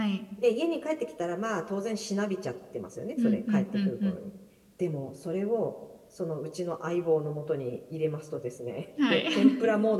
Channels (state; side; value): identical; both; correlation 1.00